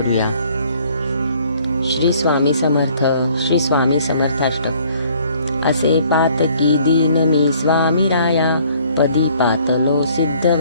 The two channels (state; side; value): inverted; both; correlation -0.59